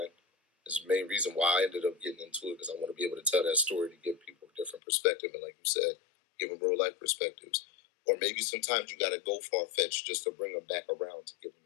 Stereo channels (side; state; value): right; drops out; at 4.8 s